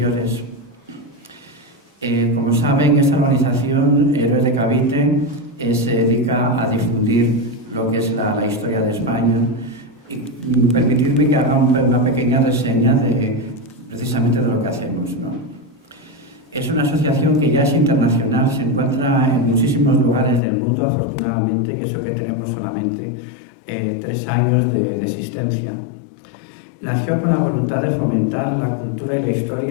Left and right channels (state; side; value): drops out; right; at 20.4 s